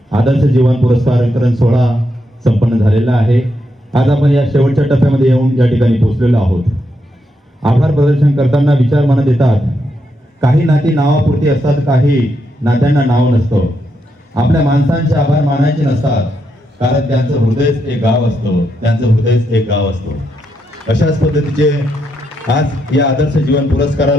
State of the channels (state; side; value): normal; both; correlation 0.81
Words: आदर्श जीवन पुरस्कार वितरण सोहळा संपन्न झालेला आहे. आज आपण या शेवटच्या टप्प्यामध्ये येऊन या ठिकाणी पोहोचलेलो आहोत. आभार प्रदर्शन करताना विचार मनात येतात, काही नाती नावापुरती असतात, काही नात्यांना नाव नसतं. आपल्या माणसांचे आभार मानायचे नसतात, कारण त्यांचं हृदयच एक गाव असतं, त्यांचं हृदयच एक गाव असतं. अशाच पद्धतीचे आज या आदर्श जीवन